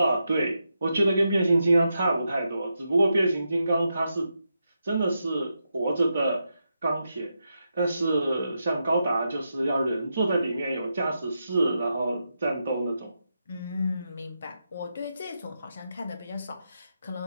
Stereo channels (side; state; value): both; inverted; correlation -0.85